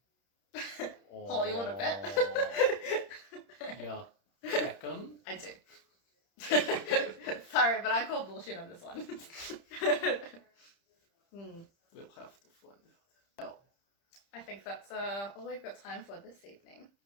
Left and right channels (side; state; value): right; late; 30 ms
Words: Oh, you want to bet? Yeah. Reckon? I do. Sorry, but I call bullshit on this one. We'll have to find out. I think that's all we've got time for this evening.